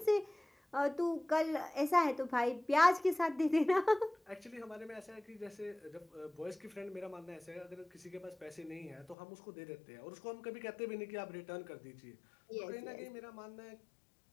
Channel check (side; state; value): right; drops out; at 9.2 s